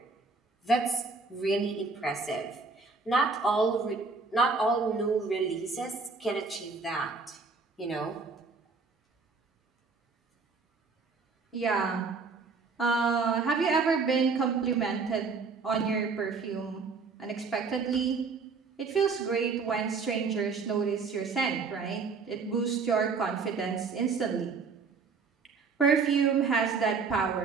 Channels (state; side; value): quieter; left; 4.7 dB